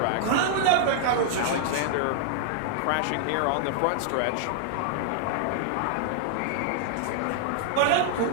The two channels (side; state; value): both; different; correlation -0.01